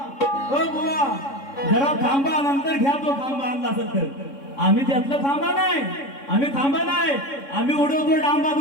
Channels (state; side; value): late; right; 3.6 ms